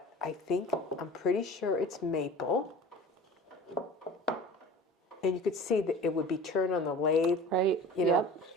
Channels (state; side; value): normal; both; correlation 0.41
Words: I'm pretty sure it's maple. And you could see that it would be turned on the lathe. Right. You know, Yep.